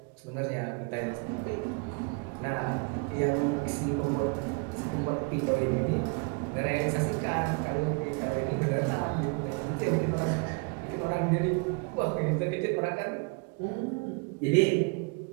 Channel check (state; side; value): quieter; left; 32.2 dB